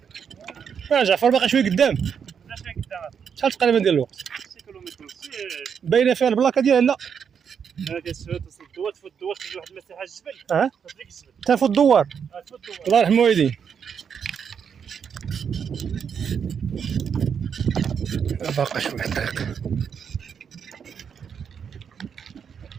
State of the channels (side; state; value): left; quieter; 7.2 dB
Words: جعفر باقي شويه قدام. شحال تقريبا ديال الوقت؟ 6 كيلومتر. باينه فيها البلاكه ديالها؟ لا تصل الدوار، تفوت الدوار تجي واحد المساحه الجبل. تفوت الجبل. تفوت الدوار. الله يرحم والديك. باقي شويه الطريق.